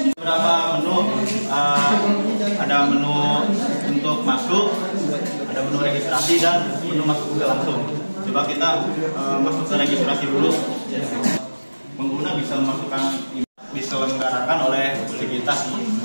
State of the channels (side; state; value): both; inverted; correlation -1.00